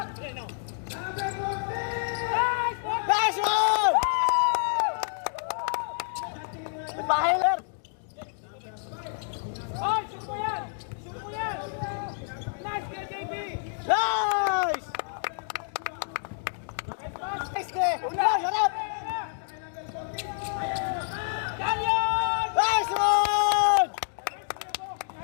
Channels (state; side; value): silent; right; digital silence